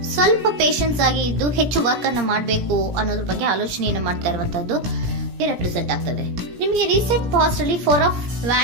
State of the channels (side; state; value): left; late; 17 ms